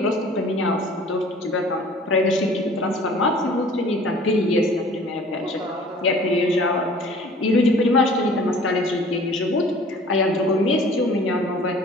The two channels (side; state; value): both; normal; correlation 0.49